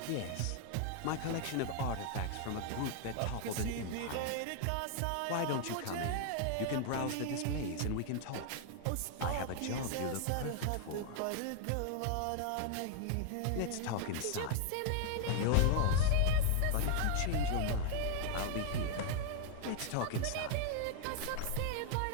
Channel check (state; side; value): different; both; correlation 0.00